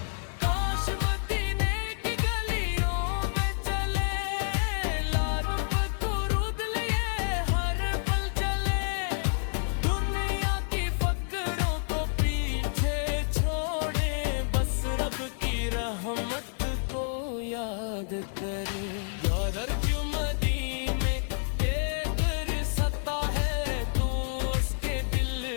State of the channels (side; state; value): right; silent; digital silence